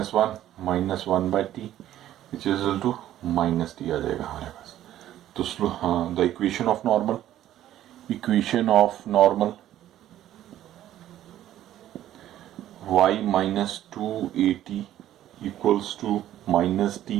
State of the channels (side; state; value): left; quieter; 12.6 dB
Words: 1 by t which is equal to minus t आ जाएगा हमारे पास. तो हाँ, the equation of normal y minus 2at equals to minus t